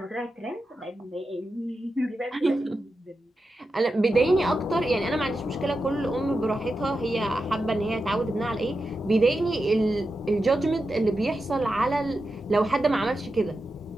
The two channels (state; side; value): normal; both; correlation 0.90